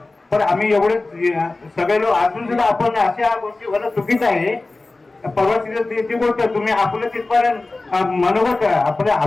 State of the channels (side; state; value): right; quieter; 3.3 dB